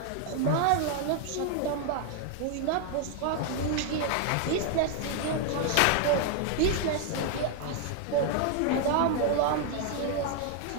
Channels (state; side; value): different; both; correlation 0.00